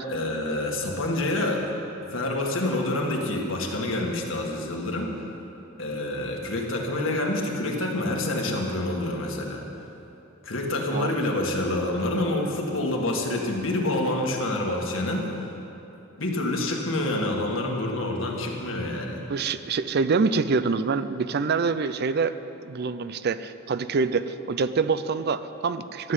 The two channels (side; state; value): both; normal; correlation 0.21